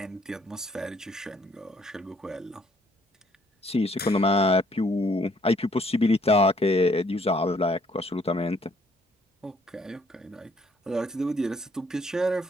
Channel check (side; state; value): both; normal; correlation 0.65